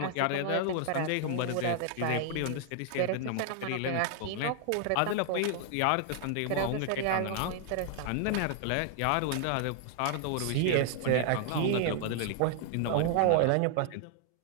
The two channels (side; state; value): both; different; correlation 0.00